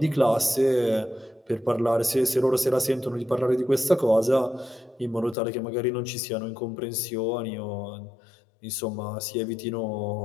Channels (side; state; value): right; drops out; at 5.4 s